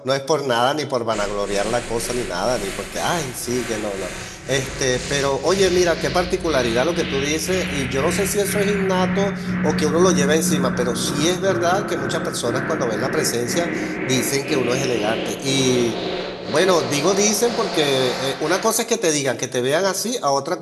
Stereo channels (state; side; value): identical; both; correlation 1.00